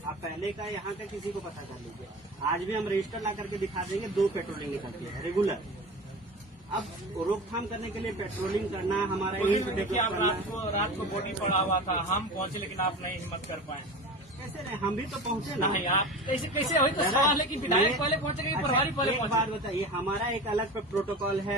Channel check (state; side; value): normal; both; correlation 0.31